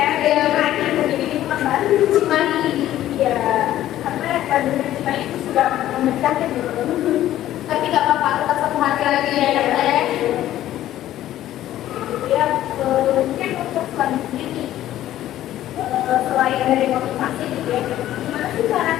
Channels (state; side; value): quieter; right; 13.2 dB